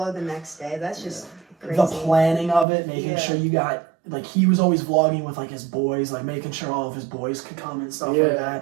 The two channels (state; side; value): drops out; left; at 2.7 s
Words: the next day. That's just crazy. The planning of it, making sure you got like he was always vlogging with like his boys, like making sure all of his boys could come and stuff like